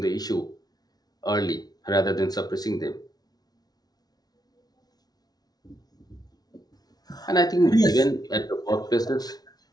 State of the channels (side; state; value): right; late; 0.19 ms